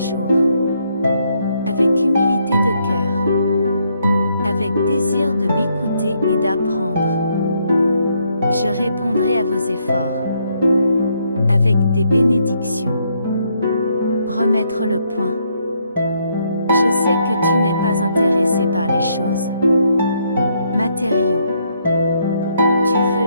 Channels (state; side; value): inverted; both; correlation -0.73